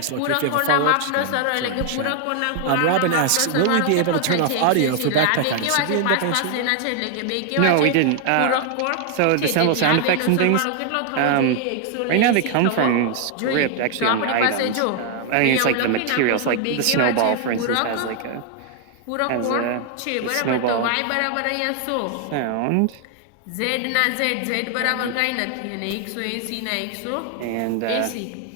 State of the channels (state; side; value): different; both; correlation 0.00